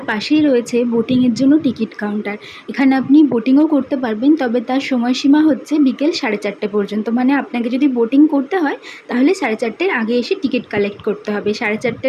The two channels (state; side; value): identical; both; correlation 1.00